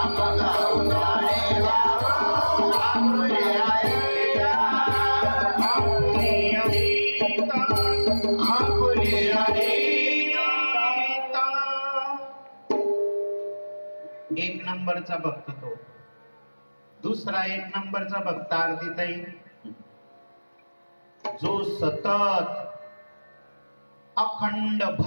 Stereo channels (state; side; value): inverted; both; correlation -1.00